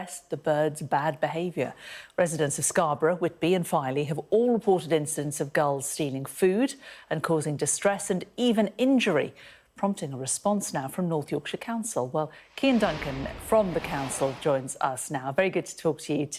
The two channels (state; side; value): identical; both; correlation 1.00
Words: the birds' bad behaviour. Residents of Scarborough, Whitby and Filey have all reported incidents of gulls stealing food and causing distress and even injury, prompting a response now from North Yorkshire Council. Well, Cian Duncan from the council joins us now. Very good to talk to you